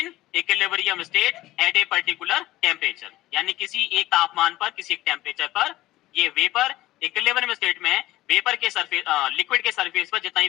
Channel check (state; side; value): quieter; right; 16.7 dB